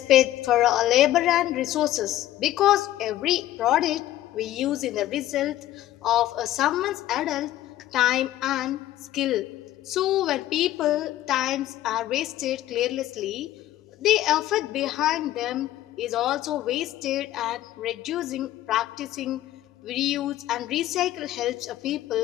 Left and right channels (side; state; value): right; quieter; 14.0 dB